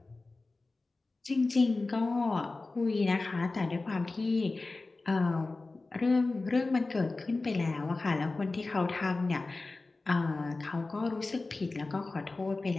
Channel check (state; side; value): quieter; right; 3.4 dB